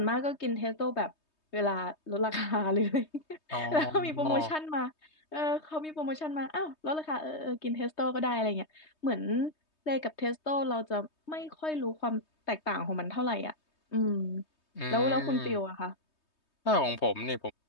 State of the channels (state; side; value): late; right; 3.2 ms